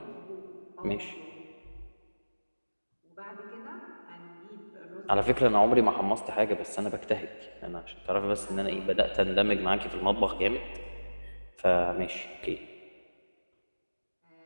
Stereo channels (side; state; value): both; inverted; correlation -1.00